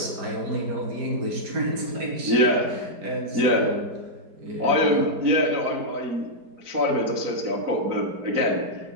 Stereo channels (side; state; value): left; late; 4.1 ms